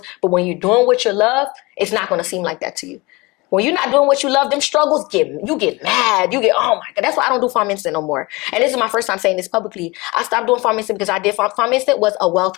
But when you're doing what you love, it's not going to seem like that to you. When you're not doing what you love, them struggles you get mad. You get, oh my God. That's why I don't do Farm Instant no more. And this is my first time saying this publicly. I stopped doing Farm Instant because I did Farm Instant was a wealth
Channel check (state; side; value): quieter; right; 23.9 dB